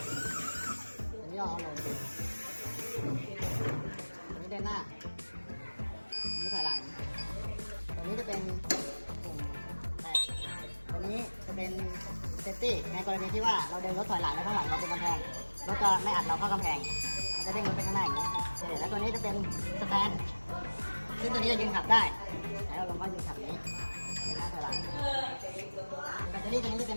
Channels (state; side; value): inverted; both; correlation -1.00